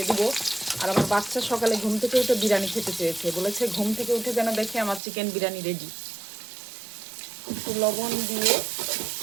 দিব। আর আমার বাচ্চা সকালে ঘুম থেকে উঠে বিরিয়ানি খেতে চেয়েছে, বলেছে ঘুম থেকে উঠে যেন দেখে আমার চিকেন বিরিয়ানি রেডি। একটু লবণ দিয়ে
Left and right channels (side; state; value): left; drops out; at 5.0 s